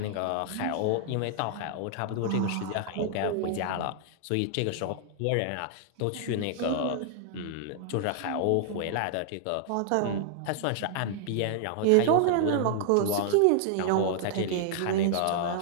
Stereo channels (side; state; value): both; different; correlation -0.01